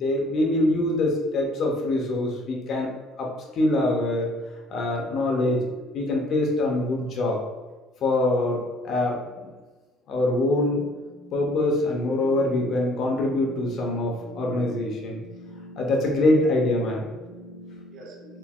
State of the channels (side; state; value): both; normal; correlation 0.59